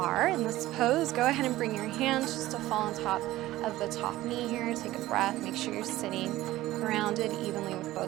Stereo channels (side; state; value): left; quieter; 16.3 dB